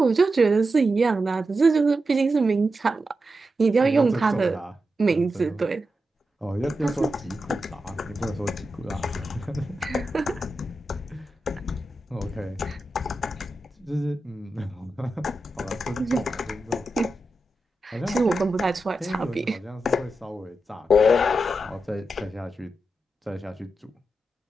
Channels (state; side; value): normal; both; correlation 0.89